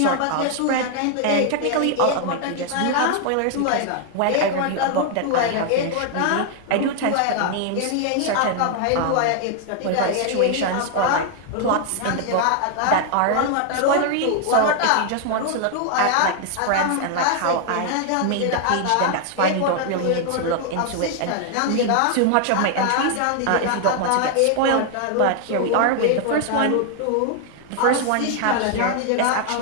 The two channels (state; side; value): different; both; correlation 0.00